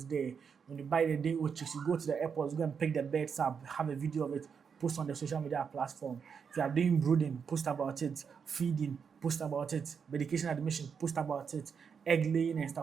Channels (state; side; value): quieter; left; 6.5 dB